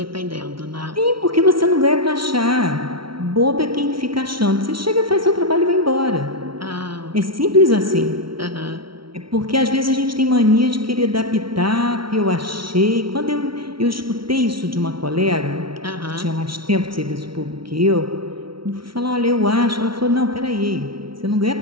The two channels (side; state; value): left; late; 0.74 ms